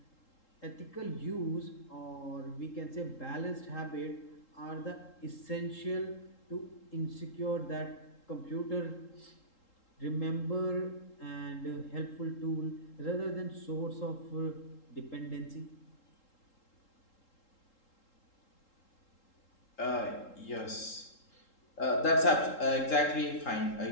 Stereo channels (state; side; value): late; right; 3.8 ms